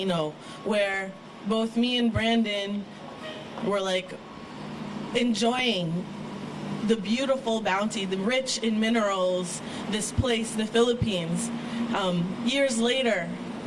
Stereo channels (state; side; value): identical; both; correlation 1.00